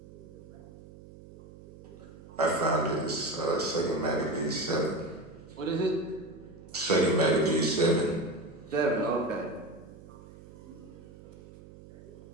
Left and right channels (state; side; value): noise; right; hum, 18 dB below the sound